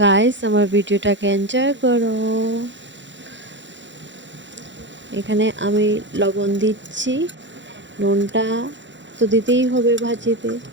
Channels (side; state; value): left; late; 0.54 ms